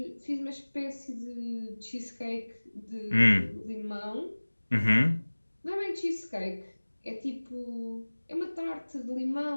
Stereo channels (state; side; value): inverted; both; correlation -1.00